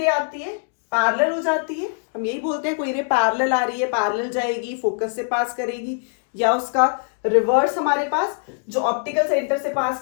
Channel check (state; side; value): silent; right; digital silence